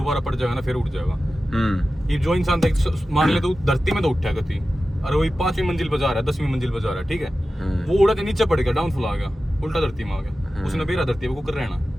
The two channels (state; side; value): normal; both; correlation 0.94